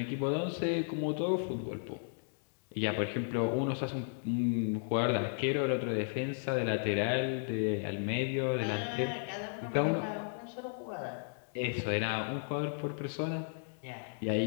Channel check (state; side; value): silent; right; digital silence